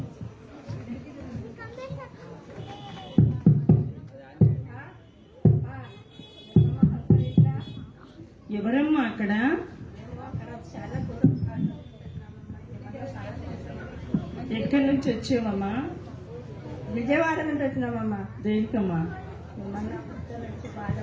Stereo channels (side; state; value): both; identical; correlation 1.00